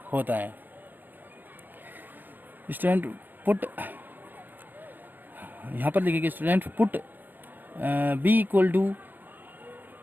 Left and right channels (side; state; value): left; late; 0.091 ms